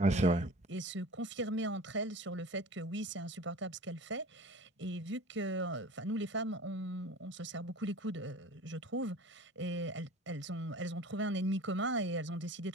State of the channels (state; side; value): normal; both; correlation 0.40